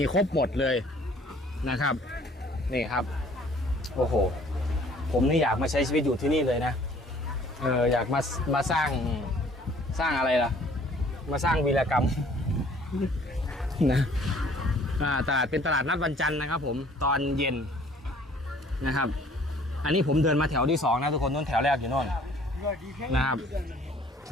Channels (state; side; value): normal; both; correlation 0.56